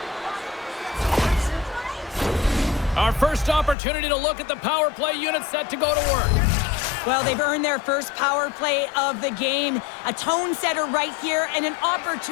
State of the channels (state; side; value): drops out; right; at 3.8 s